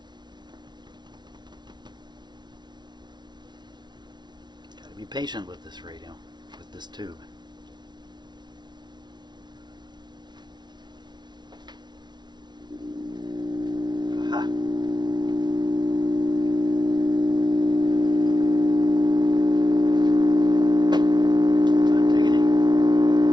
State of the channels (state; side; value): late; left; 0.20 ms